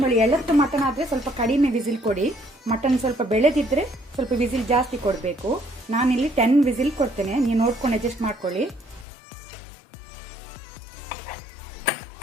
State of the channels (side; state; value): right; drops out; at 9.1 s